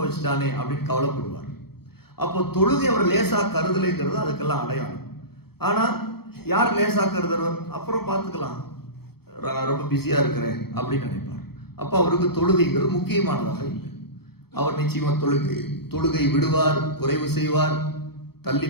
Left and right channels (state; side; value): late; right; 0.96 ms